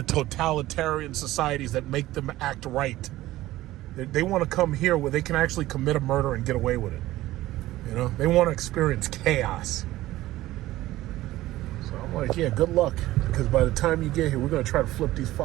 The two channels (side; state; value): left; quieter; 16.2 dB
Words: totalitarian societies that make them act right. They want to come here where they can actually commit a murder and get away with it. You know, they want to experience chaos. So I'm like, yeah, good luck, because by the time you get here, we're going to try to flip these